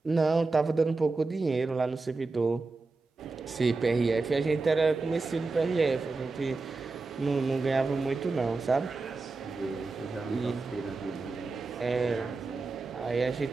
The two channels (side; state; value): left; quieter; 3.8 dB